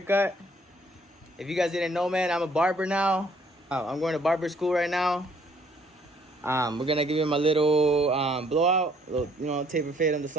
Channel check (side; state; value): both; normal; correlation 0.63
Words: If you guys didn't know, man, I'm a barber now. I'm going to barber school right now. We're gonna give him a little blowout, a little, taper fade on the